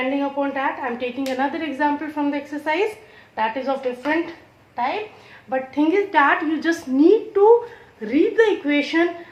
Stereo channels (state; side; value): identical; both; correlation 1.00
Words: upon that, I am taking another example from the exercise that is of different type, but thing is that you just need to read the equation